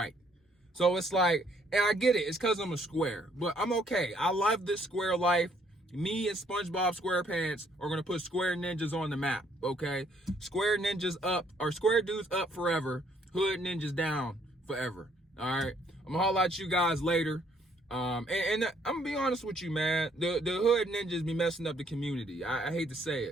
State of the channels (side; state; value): both; normal; correlation 0.66